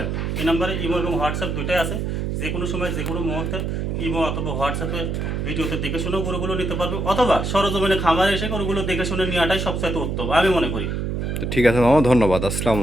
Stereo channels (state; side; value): noise; right; hum, 2 dB below the sound